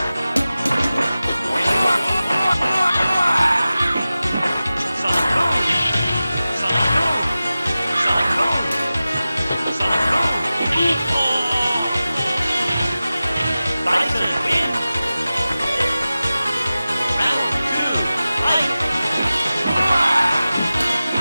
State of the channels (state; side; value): inverted; both; correlation -0.96